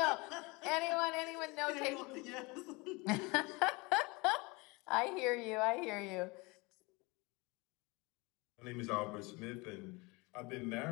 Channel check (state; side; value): quieter; right; 25.8 dB